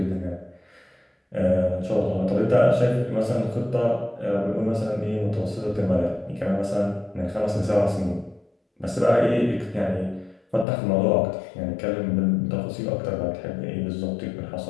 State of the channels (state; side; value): drops out; right; at 10.7 s